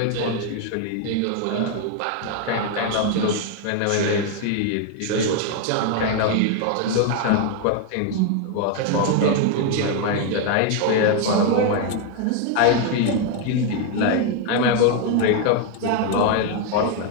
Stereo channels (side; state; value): both; different; correlation 0.01